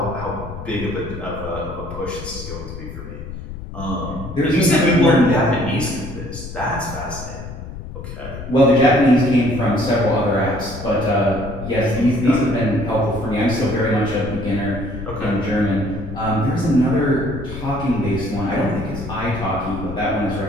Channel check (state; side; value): noise; left; rumble, 10 dB below the sound